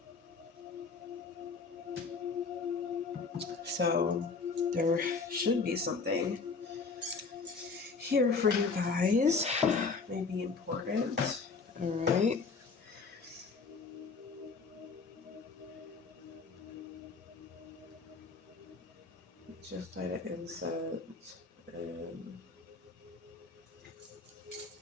so there should be something here for you guys. Maybe important. All right. Just light an incense and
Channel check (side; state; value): right; quieter; 4.6 dB